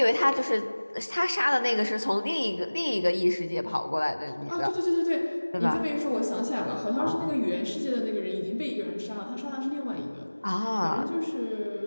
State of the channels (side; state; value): both; inverted; correlation -1.00